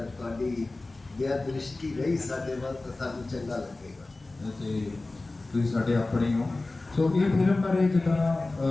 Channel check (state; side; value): quieter; right; 3.1 dB